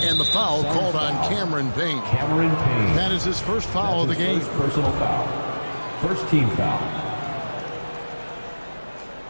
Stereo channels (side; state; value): both; inverted; correlation -1.00